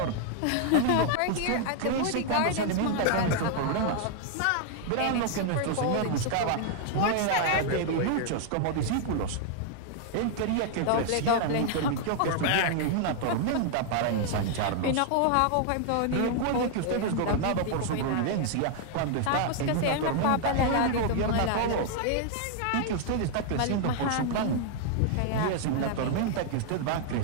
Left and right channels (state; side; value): different; both; correlation 0.00